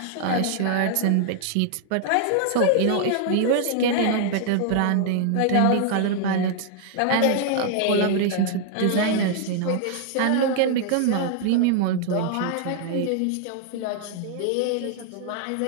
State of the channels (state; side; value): different; both; correlation 0.00